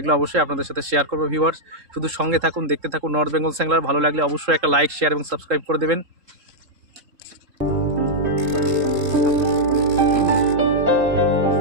অবশ্যই আপনাদের সাথে শেয়ার করবো। ভিউয়ার্স, শুধু সঙ্গে থাকুন, দেখতে থাকুন নর্থ বেঙ্গল স্যাংলার। ভালো লাগলে অবশ্যই একটা লাইক, শেয়ার এবং সাবস্ক্রাইব করে দেবেন।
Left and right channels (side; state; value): left; late; 3.7 ms